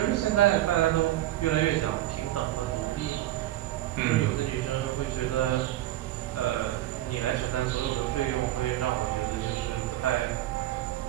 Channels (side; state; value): left; quieter; 14.6 dB